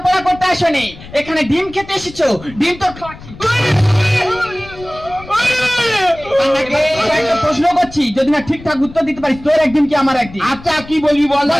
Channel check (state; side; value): noise; left; rumble, 18 dB below the sound